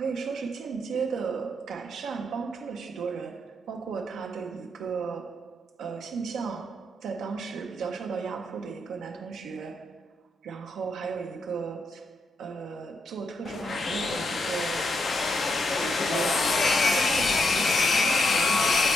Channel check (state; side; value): normal; both; correlation 0.80